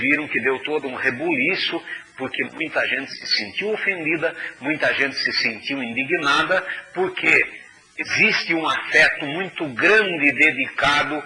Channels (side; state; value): both; identical; correlation 1.00